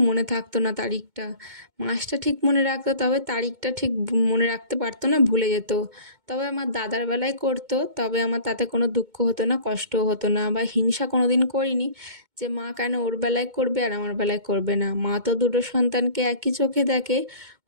মনে থাকতো না তারিখটা। মাসটা ঠিক মনে রাখতো, তবে তারিখটা ঠিক মনে রাখতে পারতো না, ভুলে যেত। তবে আমার দাদার বেলায় করতো, তবে আমার তাতে কোনো দুঃখ হতো না, কষ্টও হতো না, বা হিংসা কোনো দিন করিনি যে মা কেন ওর বেলায় করবে আর আমার বেলায় করবে না। মা তো দুটো সন্তানকে একই চোখে দেখে,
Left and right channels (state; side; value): late; left; 2.2 ms